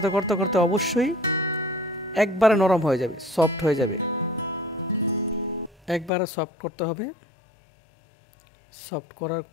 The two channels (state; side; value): drops out; right; at 6.1 s